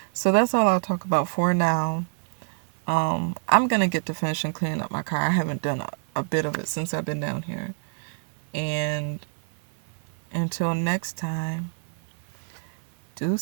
So that's all I'll talk about for now. I'm going to get to finishing cleaning up my car. I haven't done a bit of it since I've been down here. And until next time,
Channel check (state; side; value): silent; left; 61 dB below the other